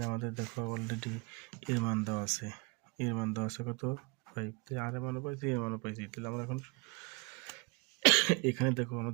আমাদের দেখো অলরেডি এর মান দেওয়া আছে, কত 5। তাহলে আর এর মানও পাইছি, এর মানও পাইছি। তাহলে আমরা এখন এখানে দেখো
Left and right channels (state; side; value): quieter; left; 28.9 dB